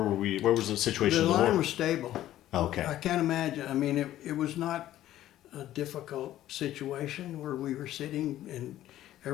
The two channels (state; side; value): quieter; right; 13.4 dB